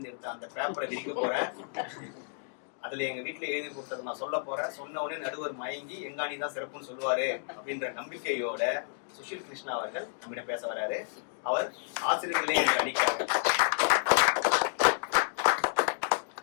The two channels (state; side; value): silent; right; digital silence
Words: எடுத்த அந்த பேப்பரை விரிக்க போறேன், அதுல எங்க வீட்டுல எழுதி கொடுத்தது நான் சொல்ல போறேன், சொன்ன உடனே நடுவர் மயங்கி எங்காணி தான் சிறப்புன்னு சொல்லுவாரு அப்படின்ற நம்பிக்கையோட சுஷீல் கிருஷ்ணா அவர்கள் நம்மிடம் பேச வராரு. அவர் ஆசிரியர்களே என்று அடிக்கிறார்.